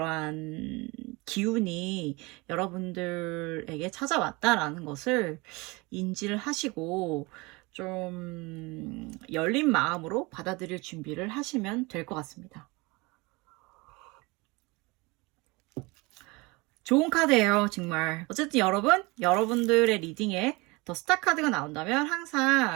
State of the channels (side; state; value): left; quieter; 25.1 dB